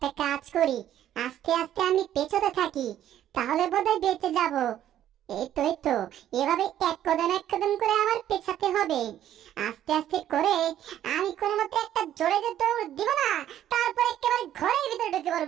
কাজ করি, আস্তে আস্তে আমি পেছতে থাকি, তাহলে বোধহয় বেঁচে যাব। এই তো এভাবে এক কদম করে আমার পেছাতে হবে। আস্তে আস্তে করে আমি কোনো মতে একটা জোরে যে দৌড় দিব না, তারপর একেবারে ঘরের ভিতরে ঢুকে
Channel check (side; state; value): left; quieter; 11.5 dB